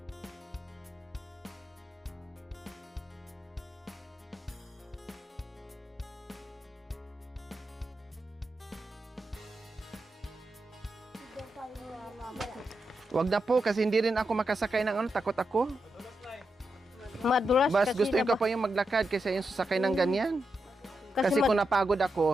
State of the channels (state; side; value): normal; both; correlation 0.86